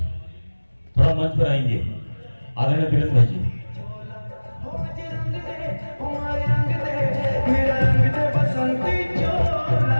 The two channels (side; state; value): both; inverted; correlation -1.00